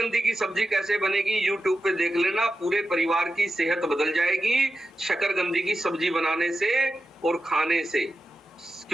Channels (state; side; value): normal; both; correlation 0.91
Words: की सब्जी कैसे बनेगी, यूट्यूब पे देख लेना, पूरे परिवार की सेहत बदल जाएगी शकरकंदी की सब्जी बनाने से और खाने से।